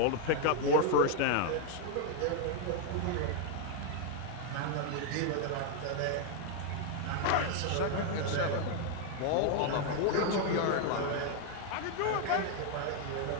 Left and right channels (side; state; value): both; different; correlation 0.01